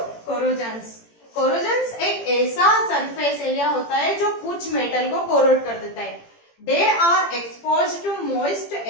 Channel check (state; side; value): late; right; 18 ms